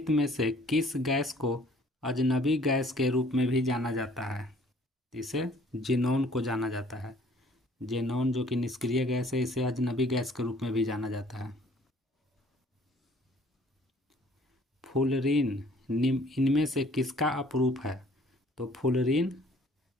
में से किस गैस को अजनबी गैस के रूप में भी जाना जाता है? इसे जेनॉन को जाना जाता है। जेनॉन जो कि निष्क्रिय गैस है, इसे अजनबी गैस के रूप में भी जाना जाता है। फ्लोरीन इनमें से किसका अपरूप है? तो फ्लोरीन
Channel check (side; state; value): both; normal; correlation 0.57